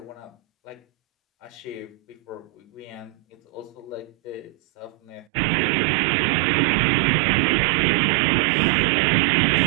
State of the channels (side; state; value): left; drops out; at 5.2 s